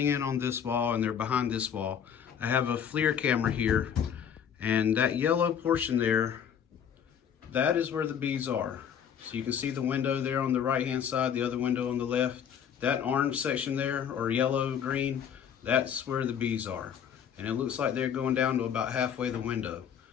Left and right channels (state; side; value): quieter; right; 8.3 dB